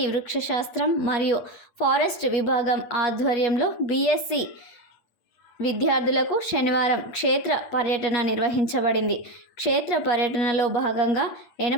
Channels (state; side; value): late; right; 8.4 ms